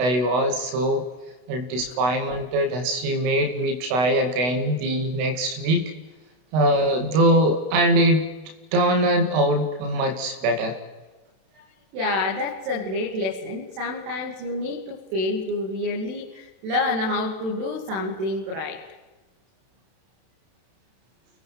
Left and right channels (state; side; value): late; left; 32 ms